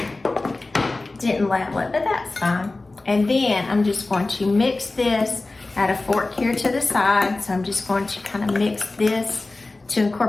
Didn't level it, but that's fine. And then I'm just going to mix this. Add a fork here to the side, so I'm just going to kind of mix this to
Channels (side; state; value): right; quieter; 3.2 dB